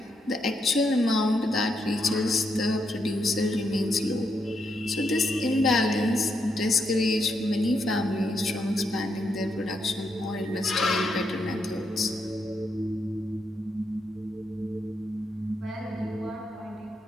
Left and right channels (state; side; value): normal; both; correlation 0.79